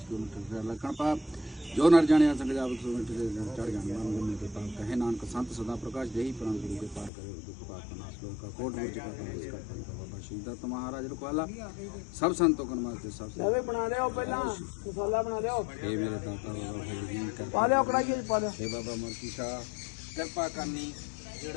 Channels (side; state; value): right; drops out; at 7.1 s